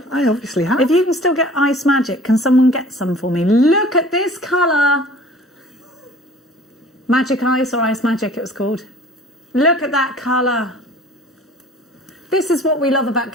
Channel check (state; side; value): normal; both; correlation 0.48